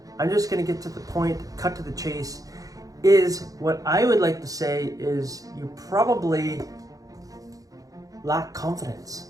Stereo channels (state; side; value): late; left; 0.17 ms